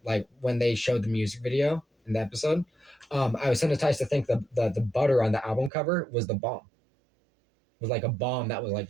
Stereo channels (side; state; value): left; drops out; at 5.7 s